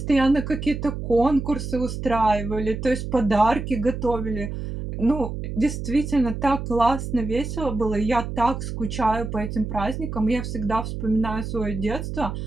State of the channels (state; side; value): noise; right; hum, 6 dB below the sound